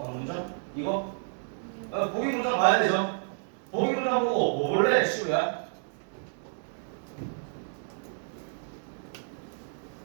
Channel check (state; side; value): silent; left; 58 dB below the other